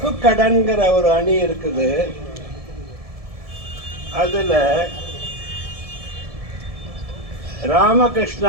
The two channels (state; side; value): late; left; 1.7 ms